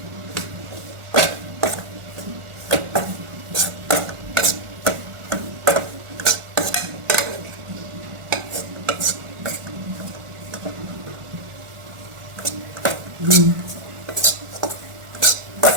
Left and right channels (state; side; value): late; left; 1.4 ms